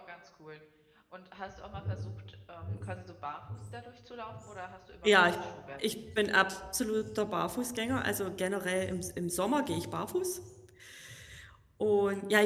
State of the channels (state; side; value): identical; both; correlation 1.00